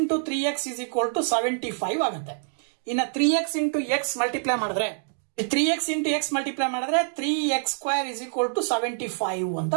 3x is equal to 75 ಆಗುತ್ತೆ. ಇನ್ನ 3x ಇಂಟು x ಮಲ್ಟಿಪ್ಲೈ ಮಾಡಿದ್ರೆ 3x ಇಂಟು x ಮಲ್ಟಿಪ್ಲೈ ಮಾಡಿದ್ರೆ 3x² is equal to 75 ಅಂತ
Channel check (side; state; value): left; silent; digital silence